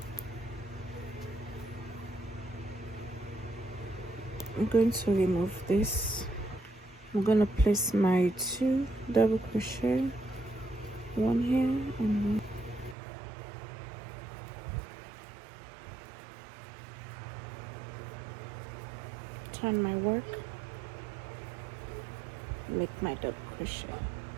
I'm going to remove this. I'm going to place my 2 double crochet, 1 here and 1. Turn my work, make my double crochet.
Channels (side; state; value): left; drops out; at 13.0 s